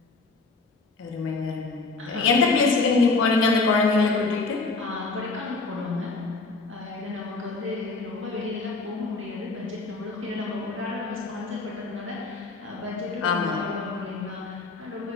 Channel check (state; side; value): quieter; right; 3.8 dB